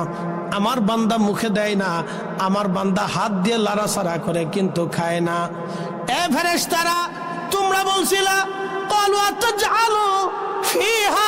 আমার বান্দা মুখে দেয় না, আমার বান্দা হাত দিয়ে লাড়াচাড়া করে কিন্তু খায় না। এ ফেরেশতারা, তোমরা বলছিলা ক্বালু আতাজআলু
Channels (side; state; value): both; identical; correlation 1.00